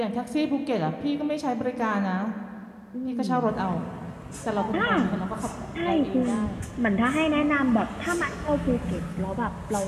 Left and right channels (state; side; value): identical; both; correlation 1.00